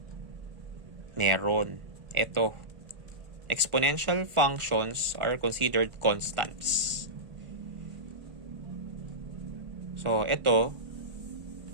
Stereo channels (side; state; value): left; late; 1.4 ms